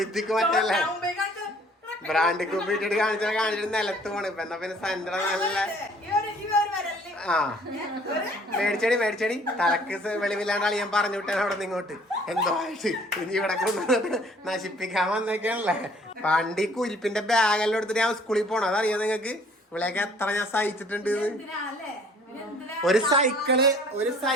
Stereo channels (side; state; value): both; normal; correlation 0.56